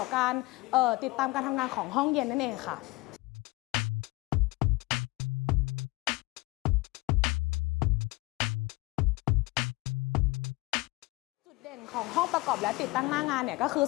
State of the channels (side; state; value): right; quieter; 22.7 dB